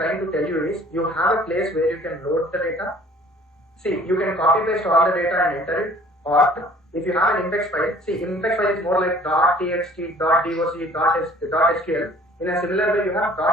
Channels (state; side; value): normal; both; correlation 0.53